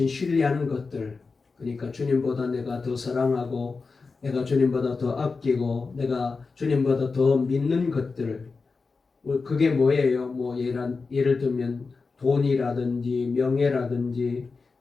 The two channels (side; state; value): right; quieter; 4.4 dB